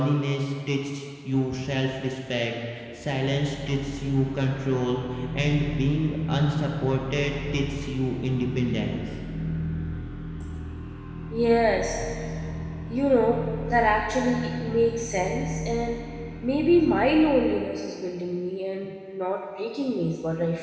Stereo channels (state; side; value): identical; both; correlation 1.00